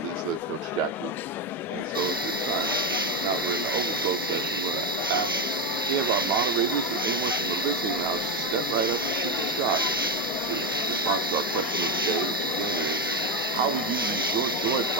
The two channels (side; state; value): both; normal; correlation 0.09